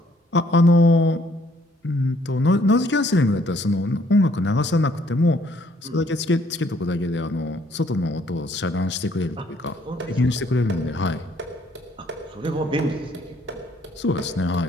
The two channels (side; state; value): both; normal; correlation 0.64